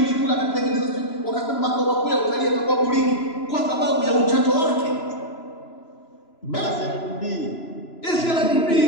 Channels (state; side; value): late; right; 3.0 ms